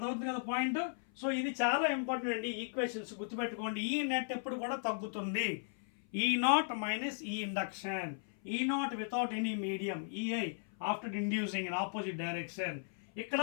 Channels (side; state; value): right; silent; 54 dB below the other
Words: కదా point? So ఇది చాలా ఇంపార్టెంట్ అండి, ఈక్వేషన్స్ గుర్తుపెట్టుకోండి. ఈ నెట్ ఎప్పుడు కూడా తగ్గుతుంది, ఈ నాట్ మైనస్ ఈ ఇండక్షన్, ఈ not without any medium, EI after inducing in opposite direction. ఇక్కడ